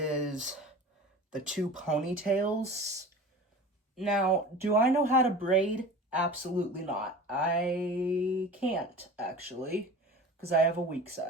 the two ponytails. Now, do I know how to braid? Absolutely not. I can't, actually, because I have a weak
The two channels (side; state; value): both; normal; correlation 0.37